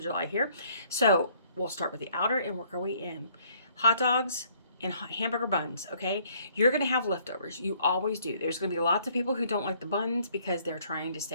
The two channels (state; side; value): inverted; both; correlation -0.62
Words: July here. So we'll start with the outer and work our way in. Hot dogs and hamburger buns, okay? You're gonna have leftovers. You always do. There's gonna be lots of people who don't like the buns because they're trying to